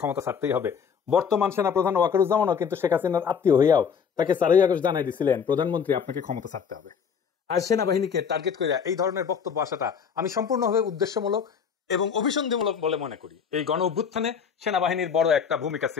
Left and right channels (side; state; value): right; quieter; 6.9 dB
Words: ছাড়তেই হবে। বর্তমান সেনাপ্রধান ওয়াকারুজ্জামানও কিন্তু শেখ হাসিনার আত্মীয় হইয়াও তাকে 4ই আগস্ট জানাই দিয়েছিলেন, প্রধানমন্ত্রী আপনাকে ক্ষমতা ছাড়তে হবে। আর সেনাবাহিনীকে টার্গেট করে এই ধরনের বক্তব্য আসাটা আমি সম্পূর্ণভাবে উদ্দেশ্যমূলক এবং অভিসন্ধিমূলক বলে মনে করি। এই গণ অভ্যুত্থানে সেনাবাহিনীর বড় একটা ভূমিকা